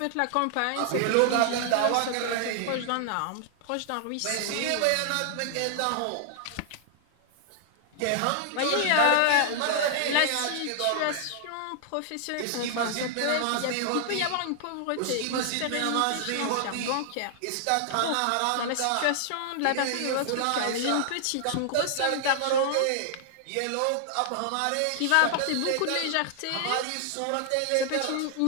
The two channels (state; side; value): different; both; correlation 0.00